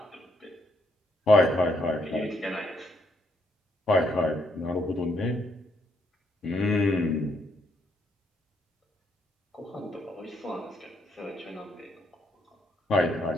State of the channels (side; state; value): both; normal; correlation 0.74